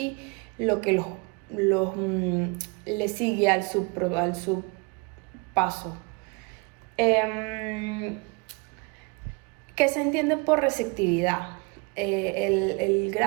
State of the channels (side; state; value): left; quieter; 29.9 dB